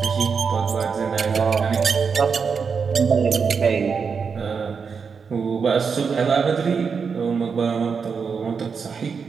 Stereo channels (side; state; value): left; quieter; 5.8 dB